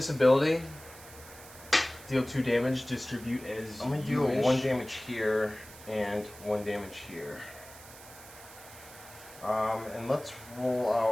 ability. Deal 2 damage. Distribute as I'm gonna you do wish. 1 damage here and 1 damage here. And let's roll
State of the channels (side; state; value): right; noise; hiss, 18 dB below the sound